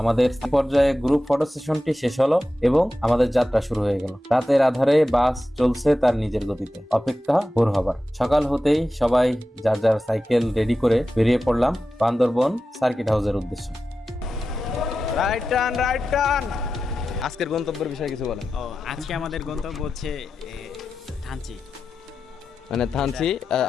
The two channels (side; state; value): both; normal; correlation 0.92